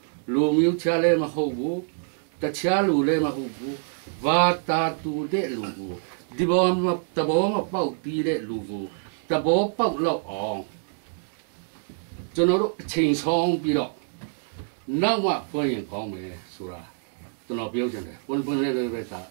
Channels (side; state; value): left; silent; 61 dB below the other